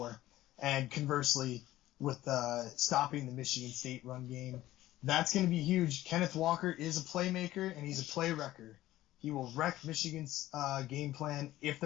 And conversely, with stopping the Michigan State run game, that's going to be huge. Kenneth Walker is a playmaker, and he's a play wrecker. He will wreck Michigan's game plan if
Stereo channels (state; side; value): quieter; right; 15.3 dB